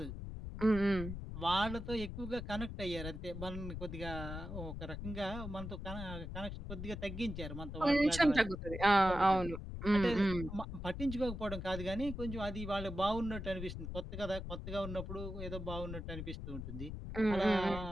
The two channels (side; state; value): left; noise; rumble, 7 dB below the sound